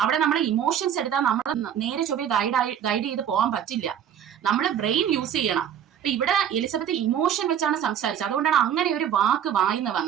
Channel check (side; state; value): left; quieter; 9.3 dB